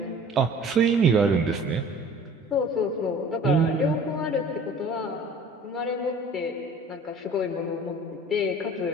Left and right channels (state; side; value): normal; both; correlation 0.47